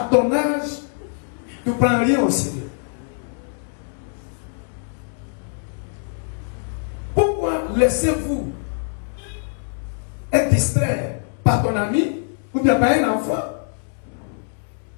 ton âge, tu ne prends rien au Seigneur? Pourquoi laissez-vous être distrait par ton ami ou bien par un enfant?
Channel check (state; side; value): silent; right; digital silence